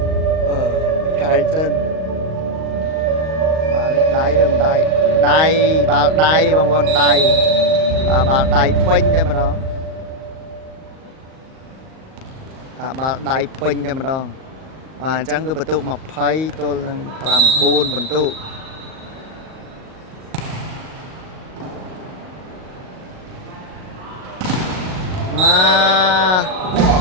ឆែកសិនបាទនេះដៃឬមិនដៃដៃបាល់ដៃបងប្អូនដៃបាទបាល់ដៃពេញតែម្ដងបាល់ដៃពេញតែម្ដងបាទអញ្ចឹងគឺបន្ទុក20ទល់នឹង9បន្ទុកប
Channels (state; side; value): late; left; 38 ms